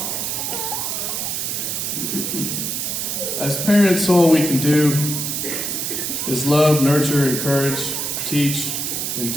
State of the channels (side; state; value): right; noise; hiss, 2 dB below the sound